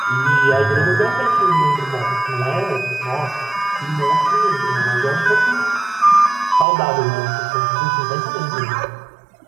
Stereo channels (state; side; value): drops out; left; at 6.7 s